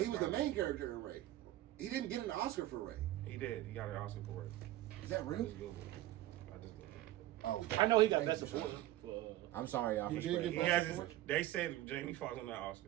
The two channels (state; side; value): quieter; left; 15.0 dB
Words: he was the main character in Ray. He didn't get an Oscar for Ray. He did. He got an Oscar for Ray. Is that I real? just Googled it. I just Googled it. Oh, I know he got thank best you, support son. for. I'm sorry, y'all, He for did spreading. He get has Best his, they said Jamie Foxx on that Oscar.